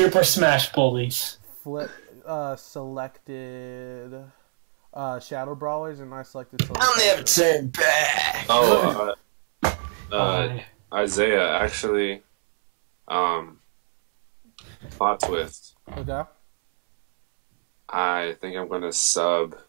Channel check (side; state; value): left; silent; 63 dB below the other